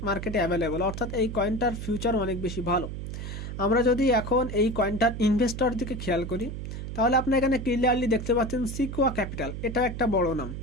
মার্কেটে অ্যাভেলেবল। অর্থাৎ এই কয়েনটার ফিউচার অনেক বেশি ভালো। আমরা যদি এখন এই কয়েনটার ইনভেস্টর দিকে খেয়াল করি তাহলে আপনি এখানে ক্লিয়ারলি দেখতে পাচ্ছেন সিকুয়া ক্যাপিটাল, এটা একটা বড় নাম,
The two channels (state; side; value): noise; right; hum, 7 dB below the sound